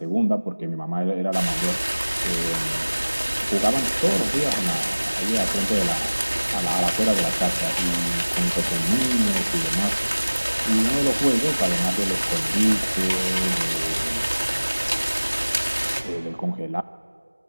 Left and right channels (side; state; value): both; inverted; correlation -1.00